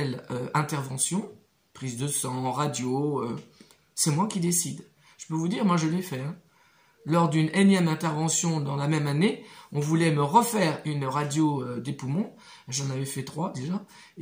intervention, prise de sang, radio, c'est moi qui décide. Je peux vous dire, moi je l'ai fait. Hein. Lors d'une énième intervention dans la même année, on voulait me refaire une radio des poumons. J'en avais fait 3 déjà.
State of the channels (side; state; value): both; identical; correlation 1.00